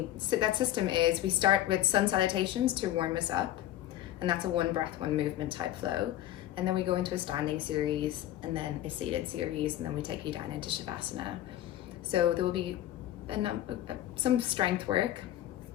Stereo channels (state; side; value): quieter; right; 13.2 dB